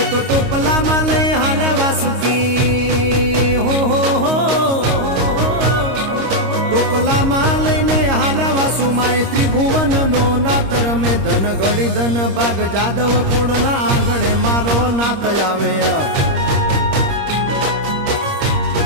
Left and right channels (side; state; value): left; late; 26 ms